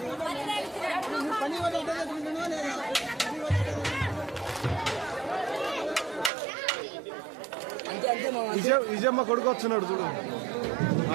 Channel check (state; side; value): drops out; left; at 6.3 s